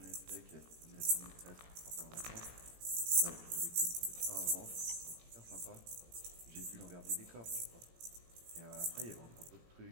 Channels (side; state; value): left; late; 17 ms